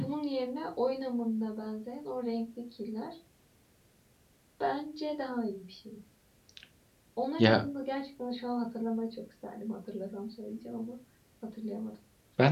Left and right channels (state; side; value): identical; both; correlation 1.00